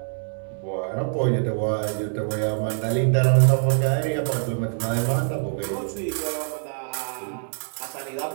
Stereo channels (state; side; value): silent; left; digital silence